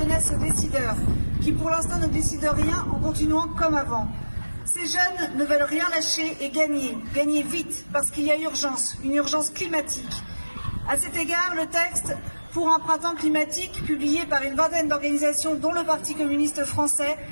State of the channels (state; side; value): inverted; both; correlation -1.00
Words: aux décideurs, qui pour l'instant ne décident rien en continuant comme avant. Ces jeunes ne veulent rien lâcher et gagner vite, parce qu'il y a urgence, une urgence climatique. À cet égard, le texte pour un printemps climatique, publié par une vingtaine d'organisations, dont le Parti communiste français,